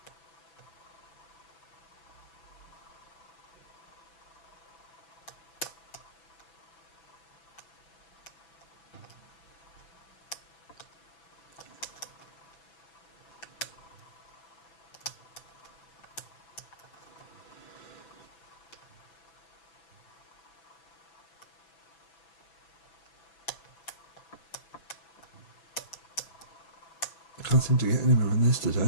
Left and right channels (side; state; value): right; late; 6.0 ms